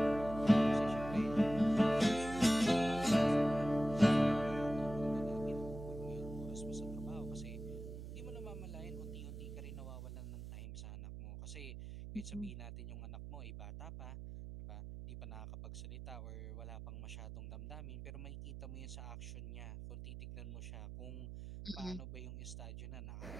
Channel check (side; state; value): right; noise; hum, 10 dB below the sound